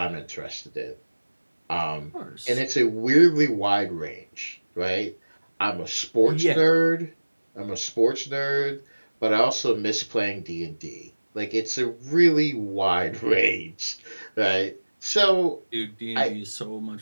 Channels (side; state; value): both; inverted; correlation -1.00